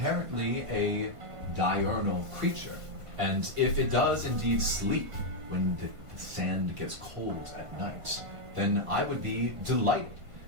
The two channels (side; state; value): left; late; 1.5 ms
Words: a diurnal creature, and if it does indeed sleep when the sand gets cold at night, then I would be delighted